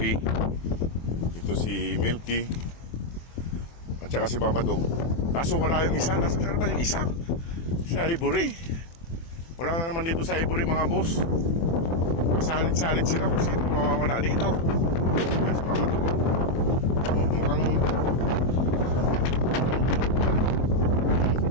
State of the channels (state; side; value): late; right; 24 ms